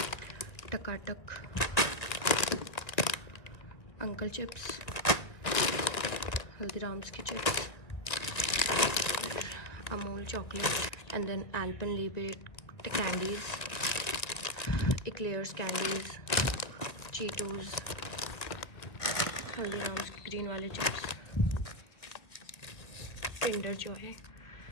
Takatak, uncle chips, Haldiram's ki chips, Amul chocolate, and then Alpenliebe candies, Eclairs candies, Cheetos, Haldiram's green wale chips, Kinder Joy,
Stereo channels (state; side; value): late; right; 1.8 ms